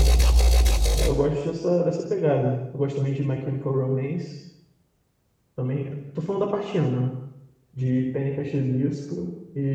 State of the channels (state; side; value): identical; both; correlation 1.00